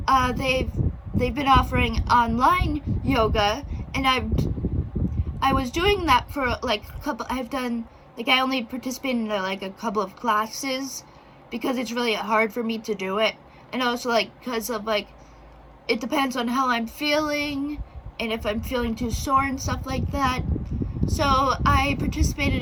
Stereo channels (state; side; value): identical; both; correlation 1.00